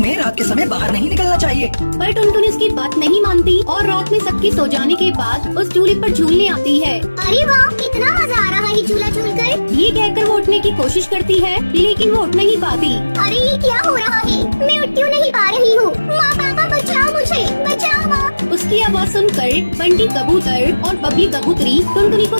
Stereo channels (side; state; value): both; inverted; correlation -1.00